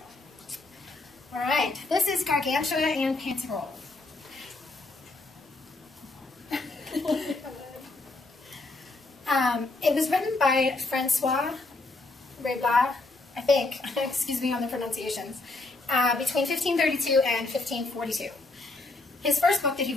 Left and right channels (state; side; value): quieter; right; 3.2 dB